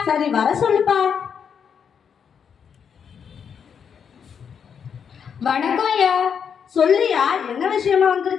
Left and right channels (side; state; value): right; quieter; 7.2 dB